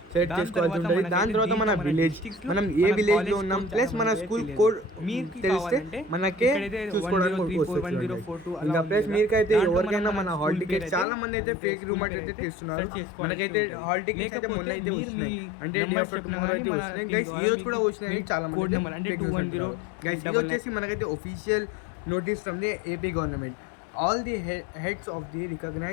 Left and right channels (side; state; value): right; drops out; at 11.1 s